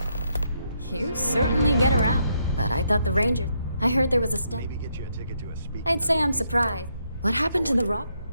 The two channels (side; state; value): both; inverted; correlation -0.77